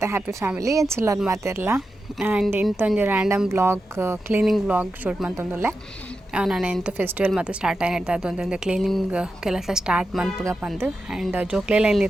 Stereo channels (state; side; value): normal; both; correlation 0.90